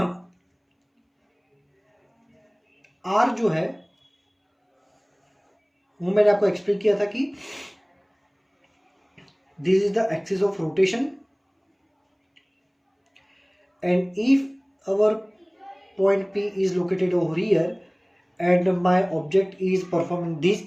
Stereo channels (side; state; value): both; identical; correlation 1.00